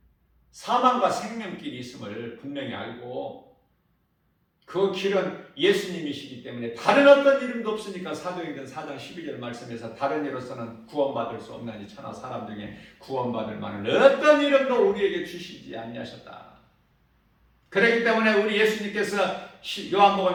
사망과 생명길이 있음을 분명히 알고, 그 길은 예수님이시기 때문에 다른 어떤 이름도 없으니까 사도행전 4장 12절 말씀에서 다른 이로서는 구원받을 수 없나니 천하 사람 중에 구원받을 만한 어떤 이름도 우리에게 주시지 아니하셨다. 그렇기 때문에 우리 예수님께서 요한복음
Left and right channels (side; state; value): both; identical; correlation 1.00